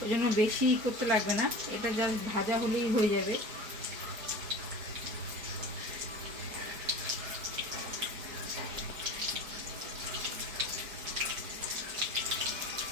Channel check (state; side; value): late; left; 4.7 ms